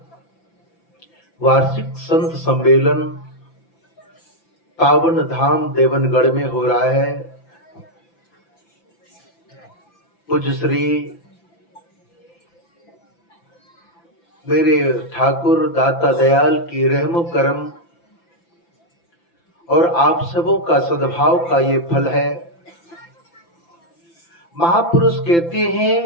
वार्षिक संत सम्मेलन पावन धाम देवनगढ़ में हो रहा है। पूज्य श्री मेरे ठाकुर दाता दयाल की रहमो करम और आप सबों का सद्भाव का ये फल है। महापुरुष कहते हैं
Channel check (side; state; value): right; late; 5.9 ms